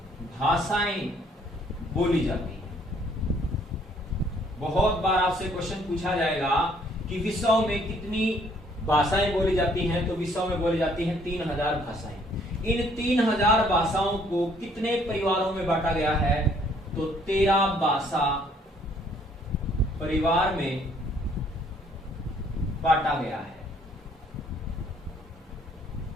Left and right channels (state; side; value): normal; both; correlation 0.63